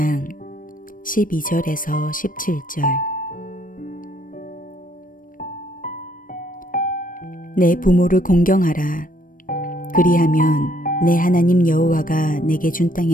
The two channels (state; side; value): late; right; 0.40 ms